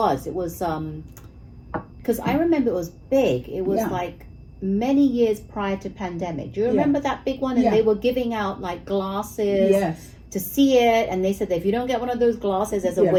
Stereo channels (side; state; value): both; identical; correlation 1.00